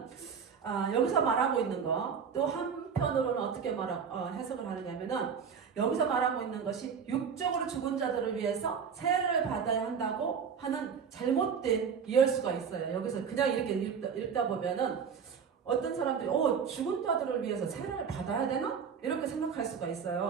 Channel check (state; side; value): quieter; left; 6.6 dB